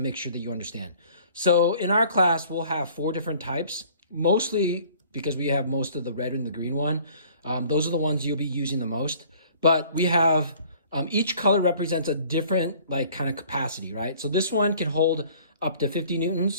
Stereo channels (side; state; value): both; inverted; correlation -0.53